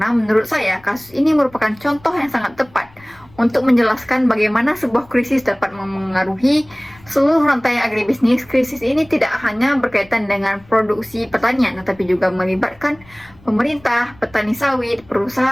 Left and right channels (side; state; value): left; noise; rumble, 26 dB below the sound